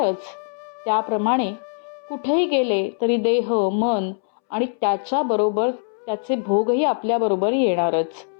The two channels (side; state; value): right; silent; 64 dB below the other